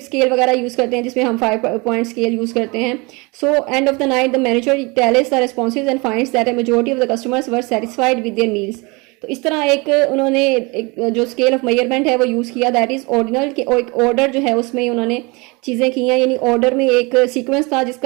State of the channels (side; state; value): left; quieter; 27.2 dB